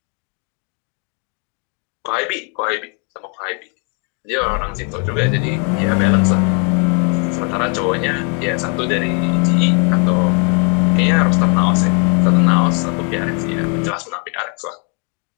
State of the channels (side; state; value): right; quieter; 36.7 dB